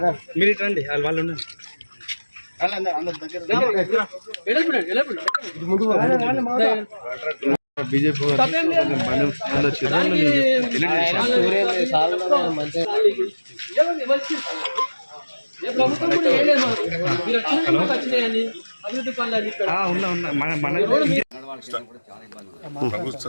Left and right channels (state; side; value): inverted; both; correlation -1.00